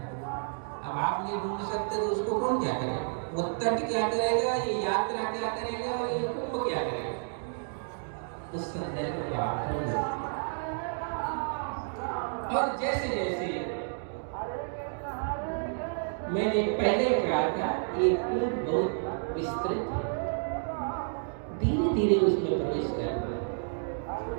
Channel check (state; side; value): silent; left; digital silence